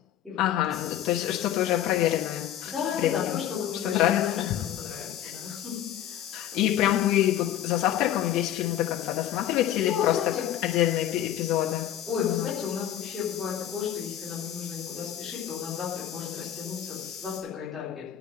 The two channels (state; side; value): quieter; right; 11.3 dB